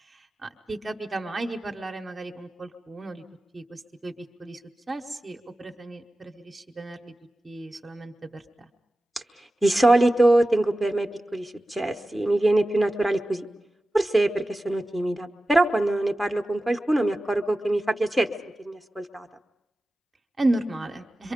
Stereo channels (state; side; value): normal; both; correlation 0.95